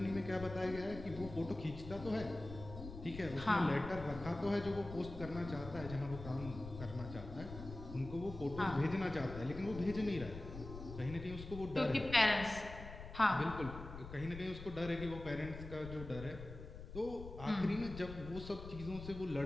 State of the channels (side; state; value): left; noise; rumble, 11 dB below the sound